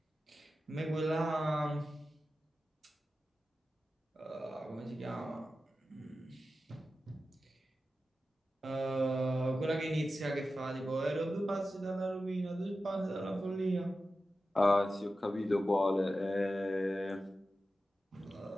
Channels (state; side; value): normal; both; correlation 0.93